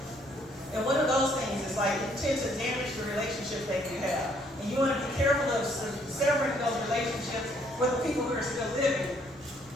And one of those things is like, it tends to damage the relationship that you have. And you want to be careful of severing those relationships with the people who are still living,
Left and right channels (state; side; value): noise; left; rumble, 26 dB below the sound